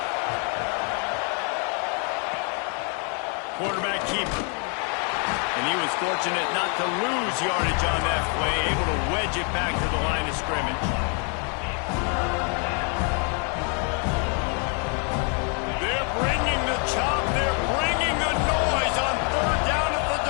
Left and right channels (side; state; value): right; quieter; 38.2 dB